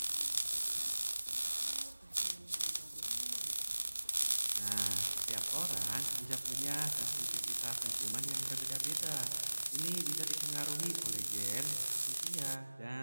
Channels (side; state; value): both; inverted; correlation -1.00